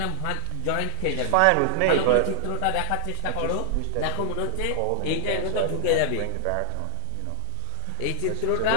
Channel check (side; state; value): both; different; correlation -0.01